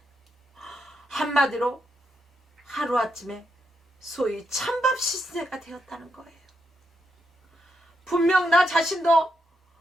한마디로 하루아침에 소위 찬밥 시세가 되었다는 거예요. 분명 나 자신도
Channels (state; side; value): normal; both; correlation 0.82